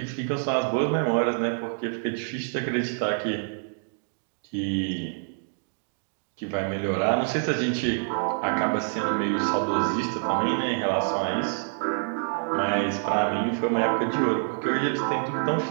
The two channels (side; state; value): left; silent; digital silence